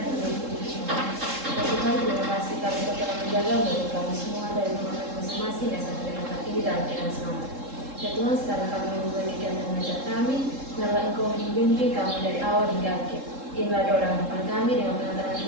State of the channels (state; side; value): late; left; 3.7 ms